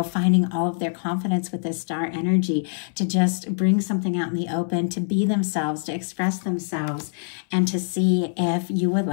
finding all of their confidence with this star energy to just bring something out in the open, to be themselves, to express themselves, and to see if you would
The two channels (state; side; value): silent; right; 63 dB below the other